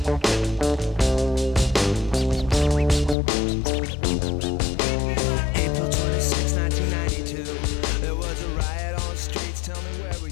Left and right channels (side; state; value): right; drops out; at 3.2 s